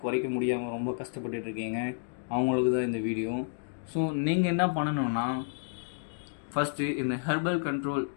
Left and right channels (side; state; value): right; silent; digital silence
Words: குறைக்க முடியாமல் ரொம்ப கஷ்டப்பட்டுட்டு இருக்கீங்க, அவங்களுக்கு தான் இந்த வீடியோ. ஸோ நீங்கள் என்ன பண்ணணுன்னா, ஃபஸ்ட்டு இந்த ஹெர்பல் கண்ட்ரோல்